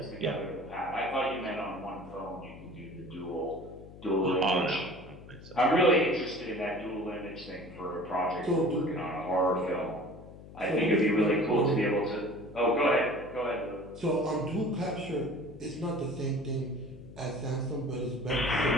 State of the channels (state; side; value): noise; left; hum, 17 dB below the sound